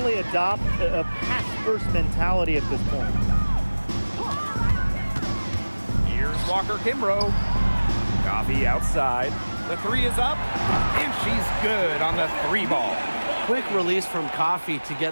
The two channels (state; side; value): inverted; both; correlation -1.00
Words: adopt a pass-first mentality at this point. Here's Walker Kimbrough. Coffey outside. The 3 is up. And she's good on the 3 ball. Quick release from Coffey to